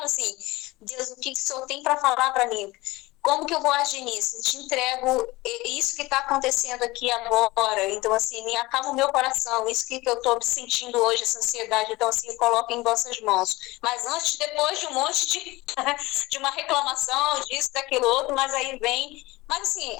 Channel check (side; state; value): right; quieter; 20.8 dB